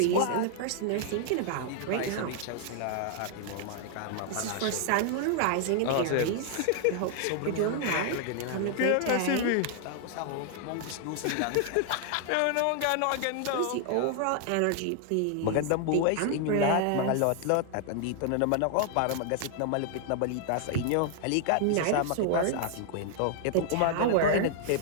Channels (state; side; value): different; both; correlation 0.00